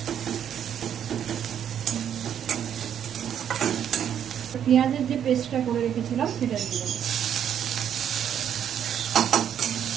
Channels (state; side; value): quieter; left; 9.2 dB